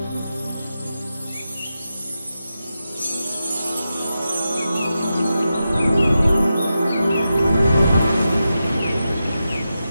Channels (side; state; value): both; inverted; correlation -0.90